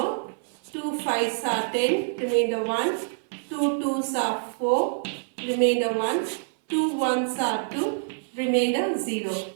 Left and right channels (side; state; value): left; silent; 61 dB below the other